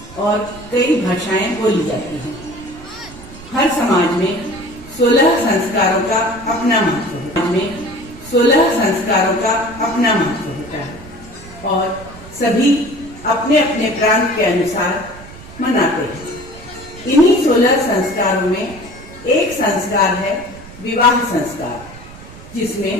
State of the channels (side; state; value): right; noise; rumble, 18 dB below the sound